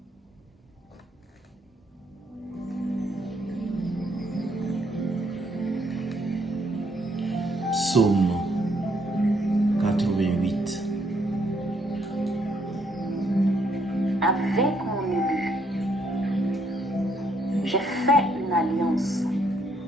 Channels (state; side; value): normal; both; correlation 0.71